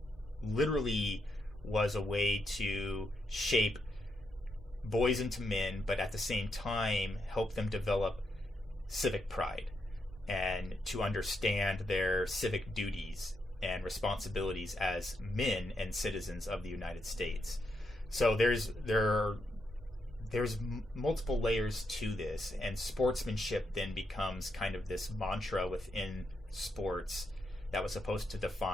literally was a way to shape boys into men, but at the same time help them develop civic pride and to understand their civic duties and responsibilities as men and citizens of the United States. So there's multiple layers to this, and sportsmanship then becomes kind of this mantra within sports that was supposed to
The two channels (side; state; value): both; normal; correlation 0.80